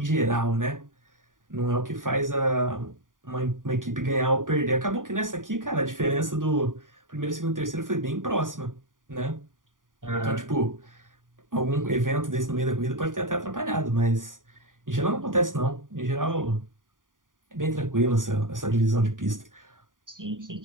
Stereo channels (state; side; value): late; left; 0.89 ms